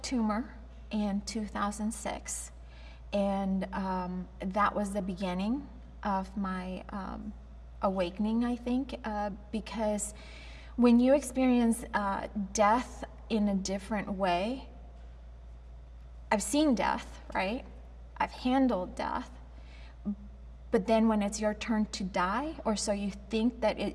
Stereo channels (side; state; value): both; identical; correlation 1.00